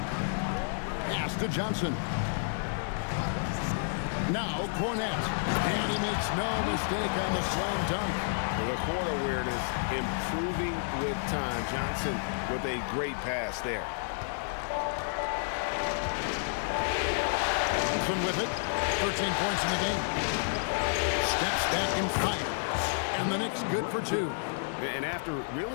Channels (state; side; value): silent; right; digital silence